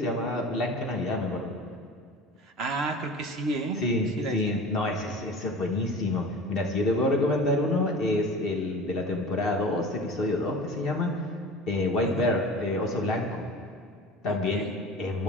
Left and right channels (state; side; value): normal; both; correlation 0.37